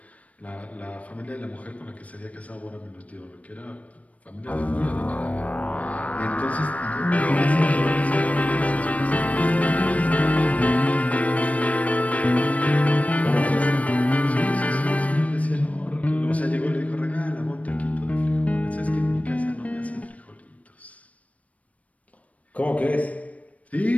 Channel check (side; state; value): right; late; 0.067 ms